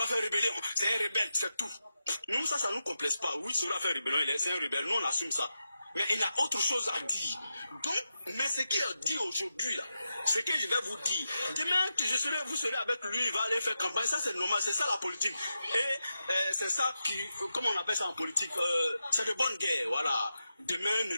a fait rébellion. C'est un rebelle, c'est tout. Nous, ça nous complexe pas. Oui, Soro a fait rébellion, c'est un rebelle. Nous, on assume ça. Mais il a autre chose à dire. Donc, mais ce qu'il a dit aujourd'hui, là, ce que je vais vous dire, demain, vous serez avec lui, il va aller faire campagne. Ça, c'est normal. C'est ça la politique. Et c'est ça qui, comment on appelle ça en politique, c'est de bonne guerre, voilà. Demain, ne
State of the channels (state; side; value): inverted; both; correlation -0.89